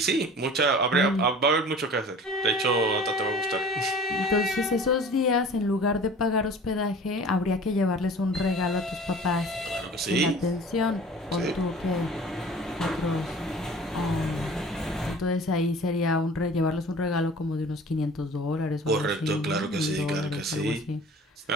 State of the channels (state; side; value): normal; both; correlation 0.43